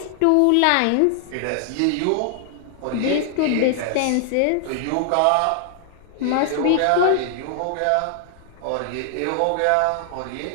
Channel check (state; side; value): different; both; correlation 0.00